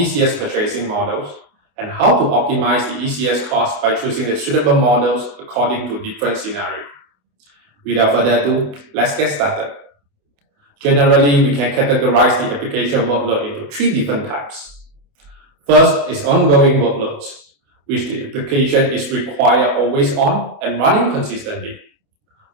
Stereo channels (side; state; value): left; late; 28 ms